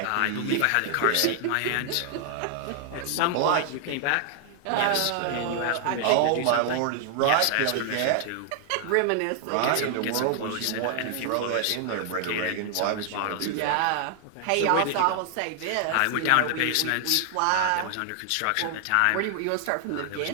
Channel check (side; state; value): both; different; correlation 0.00